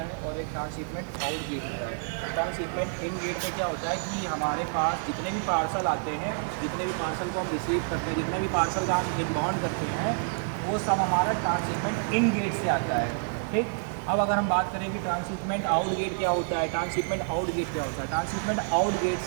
और एक ट्रांसशिपमेंट आउट गेट होता है। ट्रांसशिपमेंट इन गेट में क्या होता है कि हमारे पास जितने भी पार्सल आते हैं, जितने भी पार्सल को हम रिसीव करते हैं, जितने भी पार्सल का हम इनबाउंड करते हैं, वो सब हमारा ट्रांसशिपमेंट इन गेट से आता है, ठीक। अब अगर हम बात करें कि ट्रांसशिपमेंट आउट गेट क्या होता है, ट्रांसशिपमेंट आउट गेट क्या होता है, ट्रांसशिपमेंट आउट गेट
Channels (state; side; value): silent; left; digital silence